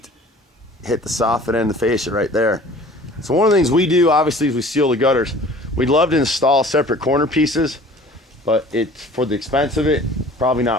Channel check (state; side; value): normal; both; correlation 0.47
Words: hit the soffit and the fascia right there. So one of the things we do, obviously, is we seal the gutters. We'd love to install separate corner pieces, but it's for the expense of it, probably